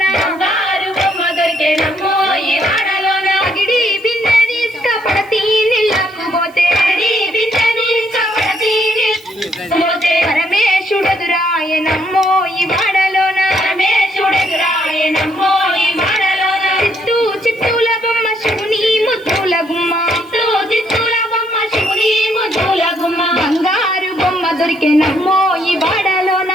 బంగారు బొమ్మ దొరికెనమ్మో ఈ వాడలోన అగిడి బిందె తీసుకుపడతి నీళ్ళకు పోతే బిందె తీసుకుపడతి పోతే పరమేశుడెదురాయనమ్మో ఈ వాడలోన పరమేశుడెదురాయనమ్మో ఈ వాడలోన చిత్తుల బొమ్మ శివుని ముద్దుల గుమ్మ చిత్తుల బొమ్మ శివుని ముద్దుల గుమ్మ బంగారు బొమ్మ దొరికెనమ్మో ఈ వాడలోన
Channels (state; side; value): noise; right; hiss, 29 dB below the sound